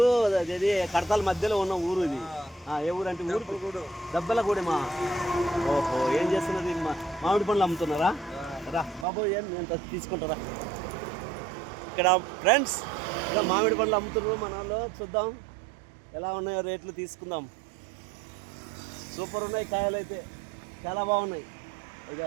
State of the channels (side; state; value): left; drops out; at 9.1 s